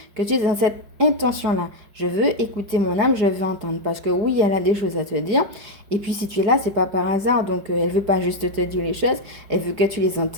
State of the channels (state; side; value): late; left; 4.9 ms